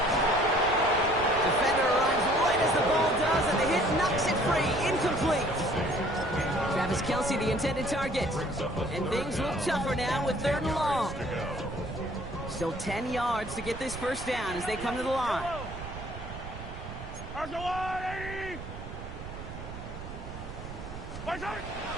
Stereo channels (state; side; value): noise; right; rumble, 10 dB below the sound